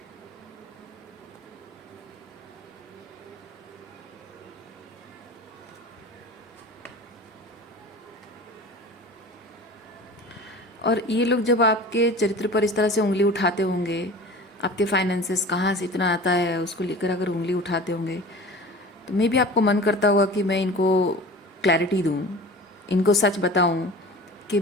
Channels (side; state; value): both; normal; correlation 0.38